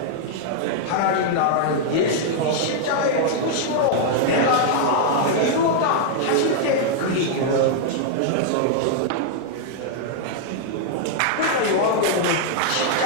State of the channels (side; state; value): both; different; correlation -0.01